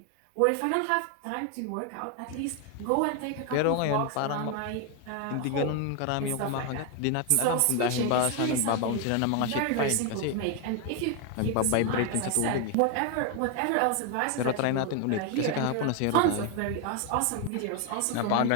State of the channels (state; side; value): different; both; correlation 0.01